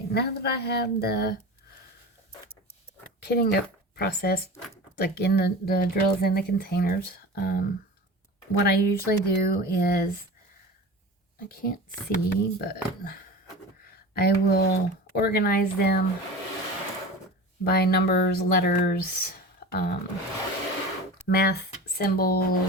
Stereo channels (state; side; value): normal; both; correlation 0.33